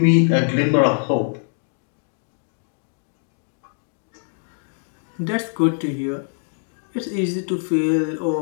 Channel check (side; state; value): right; silent; 63 dB below the other